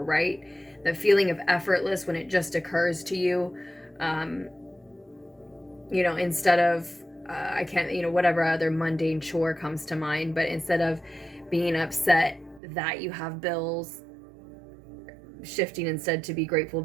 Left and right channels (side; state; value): left; drops out; at 12.6 s